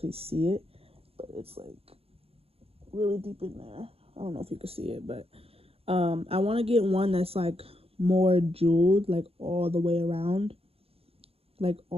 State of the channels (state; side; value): late; left; 0.28 ms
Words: see it. But it's like really deep in there. I don't know if you can see it, but I want to get one that's like more jeweled, like all the way around. Like